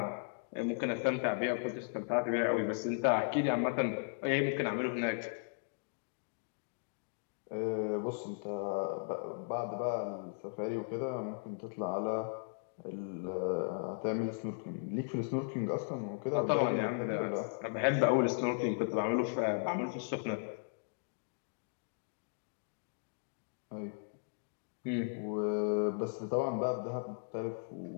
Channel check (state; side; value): silent; right; digital silence